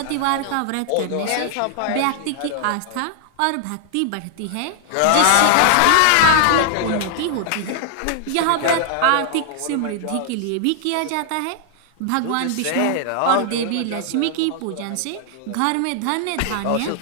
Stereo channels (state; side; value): different; both; correlation 0.00